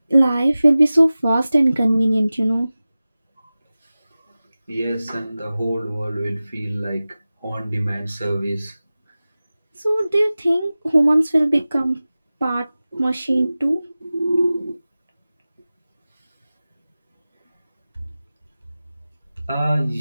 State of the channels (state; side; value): inverted; both; correlation -0.97